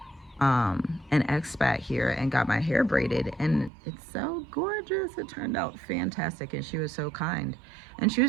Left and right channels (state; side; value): drops out; left; at 3.7 s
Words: an Expat here and got my hair braided, and it's so gorgeous. It turned out fantastic, and she was so kind. And she